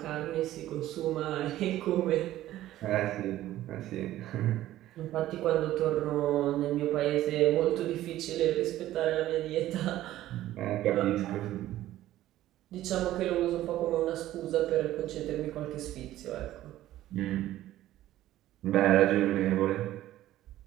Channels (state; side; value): quieter; left; 14.2 dB